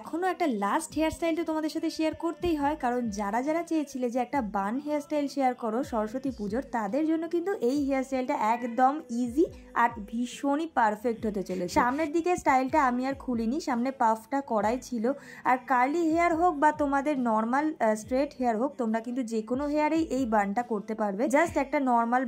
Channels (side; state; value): both; identical; correlation 1.00